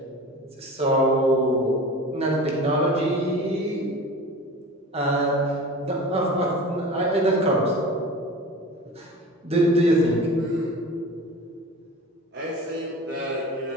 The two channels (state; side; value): normal; both; correlation 0.36